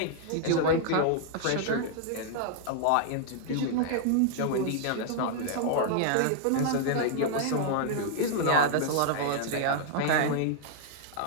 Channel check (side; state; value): both; different; correlation -0.01